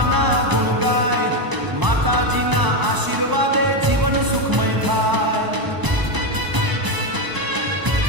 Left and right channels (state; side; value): late; left; 1.0 ms